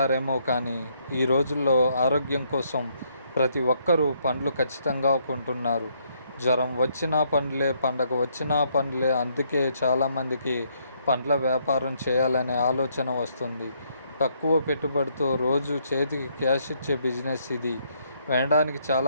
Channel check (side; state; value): both; inverted; correlation -0.71